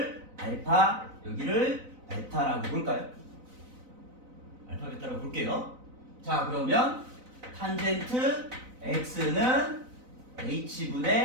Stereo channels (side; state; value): left; late; 4.0 ms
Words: 알파, 여기를 베타라고 볼까요? 알파, 베타라고 볼게요. 자, 그러면 탄젠트 x는